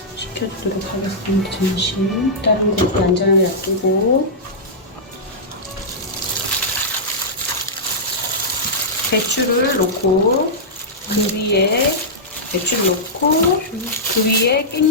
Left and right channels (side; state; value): both; normal; correlation -0.12